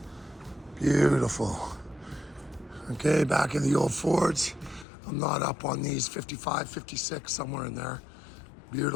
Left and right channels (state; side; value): drops out; right; at 4.9 s